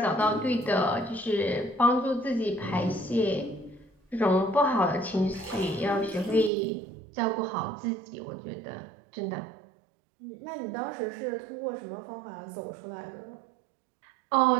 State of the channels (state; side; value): drops out; left; at 6.5 s